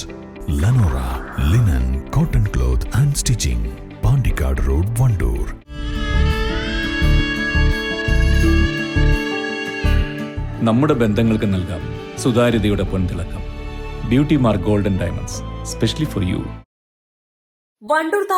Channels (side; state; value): both; identical; correlation 1.00